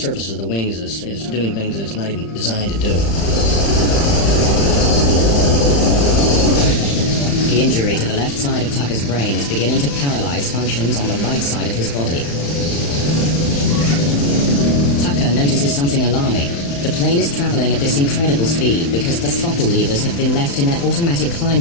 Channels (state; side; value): late; right; 36 ms